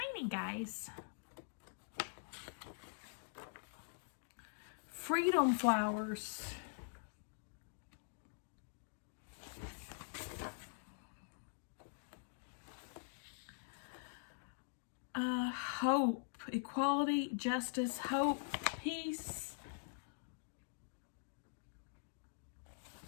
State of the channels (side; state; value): right; silent; digital silence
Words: guys. Freedom Flowers. Hope, equality, justice, hope, peace.